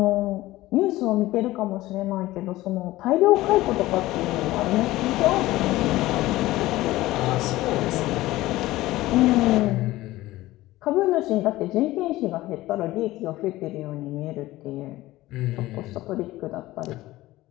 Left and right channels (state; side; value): quieter; right; 17.3 dB